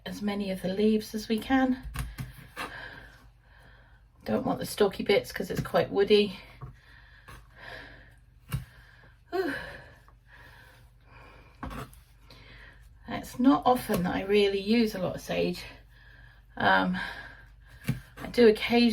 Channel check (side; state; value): both; identical; correlation 1.00